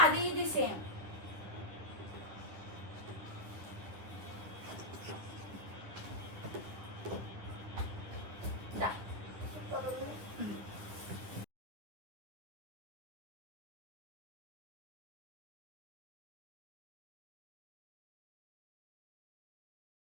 అది ఇది సేమ్.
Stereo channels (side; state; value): left; late; 10 ms